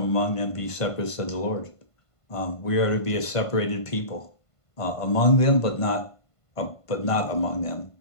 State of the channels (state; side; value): late; right; 1.5 ms